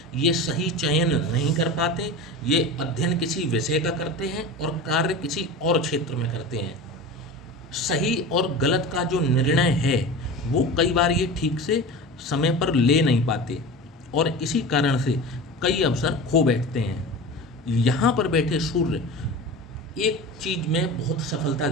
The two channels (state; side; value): normal; both; correlation 0.31